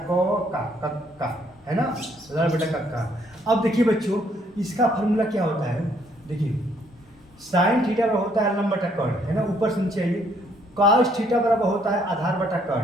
का कक्का, है ना, लाल बटा कक्का। अब देखिए बच्चों इसका फॉर्मूला क्या होता है, देखिए साइन थीटा बराबर होता है लंब बटा कर्ण, है ना, ऊपर से नीचे आइए। कॉस थीटा बराबर होता है आधार बटा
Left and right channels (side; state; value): both; normal; correlation 0.67